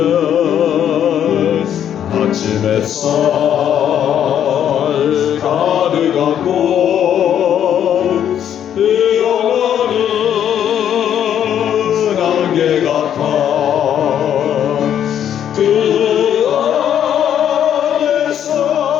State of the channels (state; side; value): quieter; right; 9.7 dB